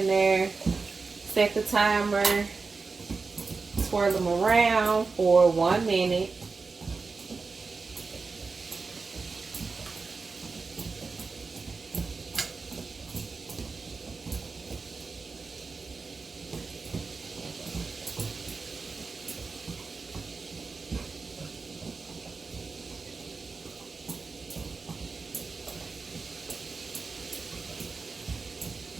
there, set the timer, swirl them around for 1 minute.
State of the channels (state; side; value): quieter; left; 4.4 dB